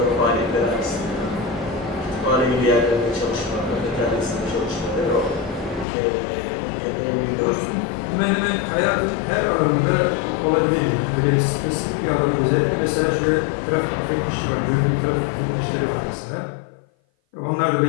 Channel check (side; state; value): right; drops out; at 5.9 s